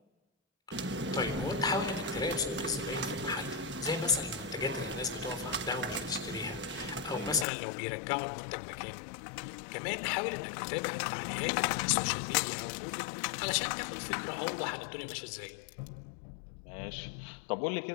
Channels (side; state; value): right; drops out; at 7.5 s